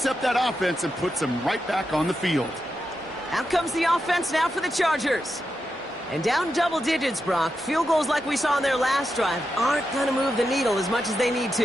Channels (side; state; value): both; normal; correlation 0.87